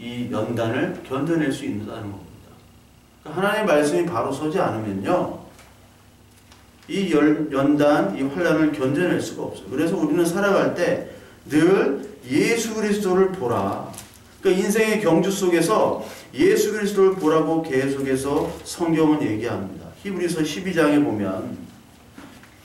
연단을 견뎌낼 수 있다는 겁니다. 하나님의 말씀이 바로 서지 않으면요, 이 연단, 이 환난을 견뎌낼 수가 없어요. 그래서 우리는 살아갈 때 늘 예수 그리스도를 보라. 그러니까 인생의 경주 속에서 예수 그리스도를 보라고 계속해서 성경은 얘기합니다. 히브리서 12장에 보면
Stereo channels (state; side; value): identical; both; correlation 1.00